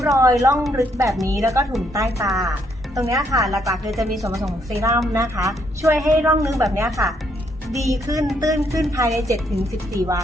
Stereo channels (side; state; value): both; normal; correlation 0.72